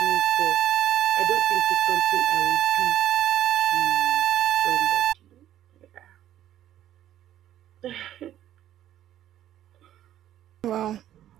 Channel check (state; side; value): quieter; left; 11.9 dB